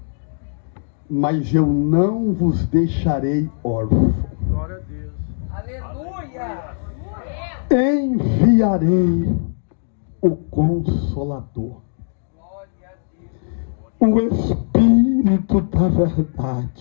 mas eu não vos deixarei órfãos. Glória a Deus. Aleluia. Enviarei o Consolador, Glória a Deus. o Espírito da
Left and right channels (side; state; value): right; silent; digital silence